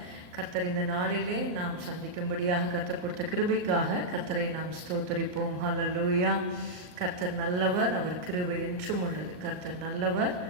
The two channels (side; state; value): left; late; 39 ms